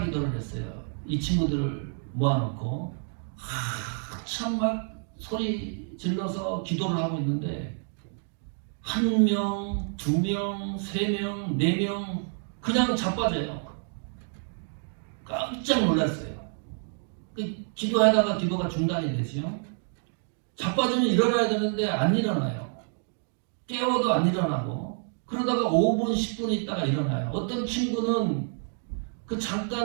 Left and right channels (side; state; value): left; silent; 59 dB below the other